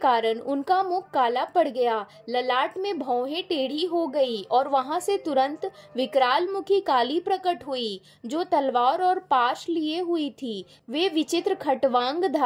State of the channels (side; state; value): both; identical; correlation 1.00